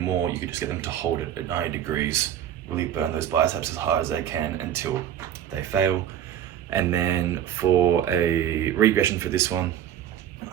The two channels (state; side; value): quieter; left; 10.5 dB